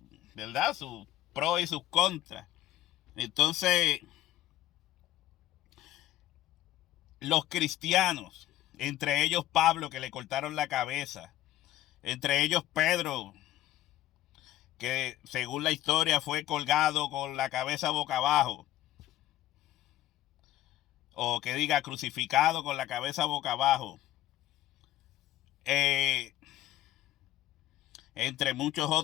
¿verdad?, sus pros y sus contras. Entonces, los cristianos, entre ellos Pablo, que le cortaron la cabeza, entre ellos Pedro, que según la historia fue colgado con la cabeza boca abajo, o que diga crucificado con la cabeza boca abajo, entre muchos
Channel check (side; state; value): right; quieter; 14.0 dB